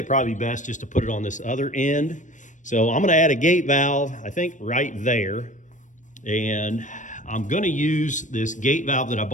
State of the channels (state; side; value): late; right; 0.37 ms